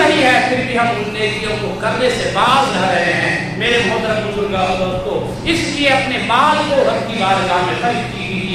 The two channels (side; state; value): both; identical; correlation 1.00